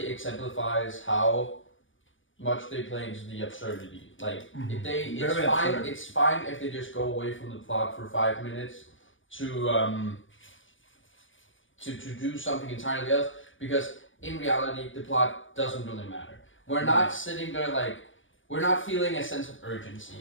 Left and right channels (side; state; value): right; late; 0.57 ms